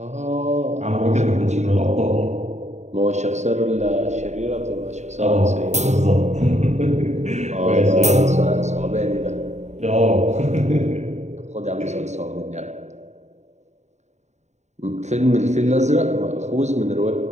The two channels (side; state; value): left; late; 0.33 ms